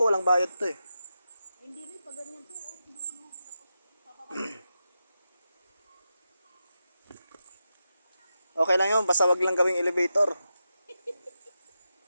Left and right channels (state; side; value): inverted; both; correlation -0.89